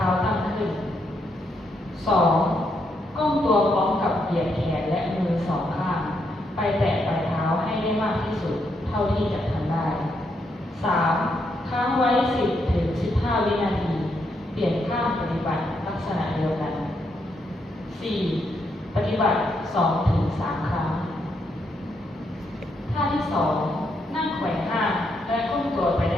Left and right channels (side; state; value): both; normal; correlation 0.78